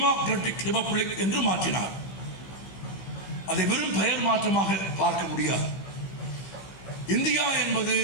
republic என்று மாற்றினார். அதை வெறும் பெயர் மாற்றமாக பார்க்க முடியாது. இந்தியா என்பது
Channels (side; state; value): right; late; 15 ms